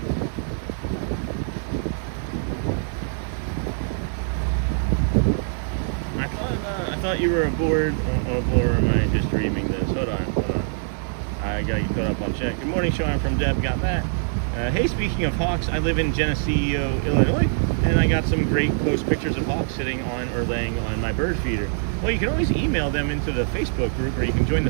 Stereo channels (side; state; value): left; silent; digital silence